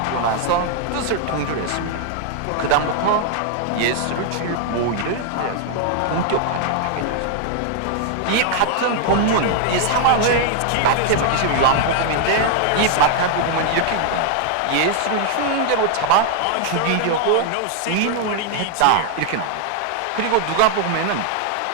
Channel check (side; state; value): both; different; correlation 0.00